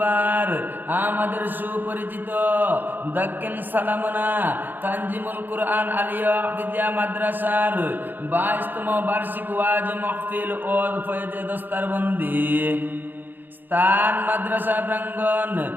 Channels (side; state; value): left; late; 0.090 ms